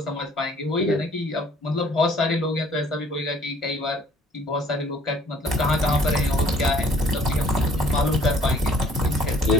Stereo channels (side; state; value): both; normal; correlation 0.57